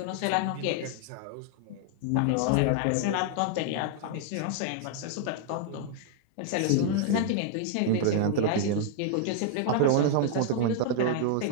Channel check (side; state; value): both; different; correlation 0.00